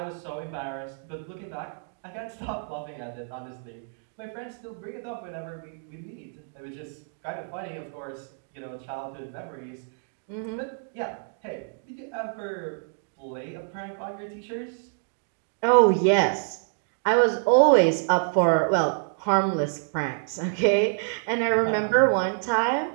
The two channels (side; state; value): left; silent; digital silence